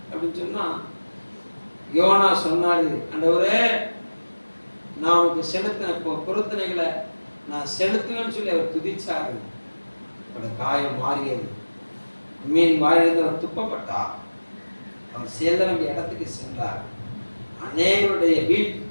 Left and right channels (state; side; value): inverted; both; correlation -1.00